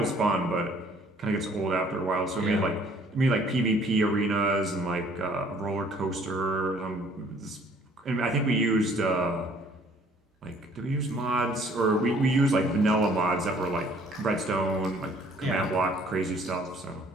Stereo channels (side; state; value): both; normal; correlation 0.58